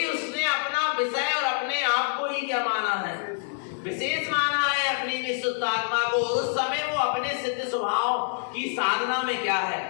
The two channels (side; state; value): right; silent; 61 dB below the other